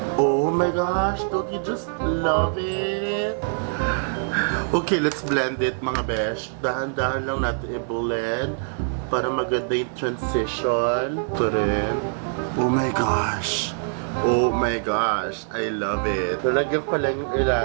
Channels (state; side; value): silent; left; digital silence